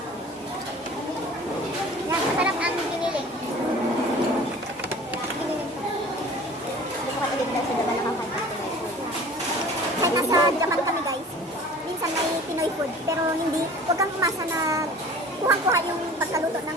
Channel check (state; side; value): normal; both; correlation 0.44